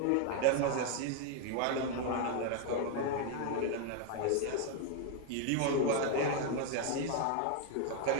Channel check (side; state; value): both; different; correlation 0.00